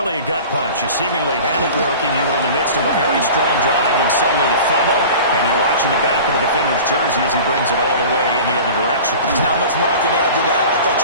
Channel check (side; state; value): both; inverted; correlation -0.38